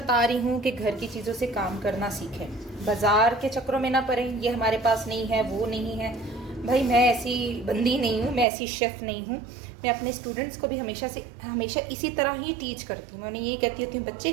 रही हूँ कि घर की चीज़ों से काम करना सीखें, बाज़ार के चक्करों में ना पड़ें। ये हमारे पास नहीं है, वो नहीं है। भाई मैं ऐसी बंदी नहीं हूँ, मैं ऐसी शेफ़ नहीं हूँ। मैं अपने स्टूडेंट्स को भी हमेशा इसी तरह ही टीच करती हूँ। मैं उन्हें ये कहती होती हूँ, बच्चे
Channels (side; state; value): left; drops out; at 8.5 s